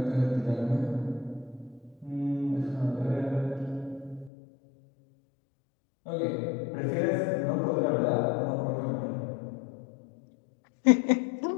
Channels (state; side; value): drops out; right; at 4.3 s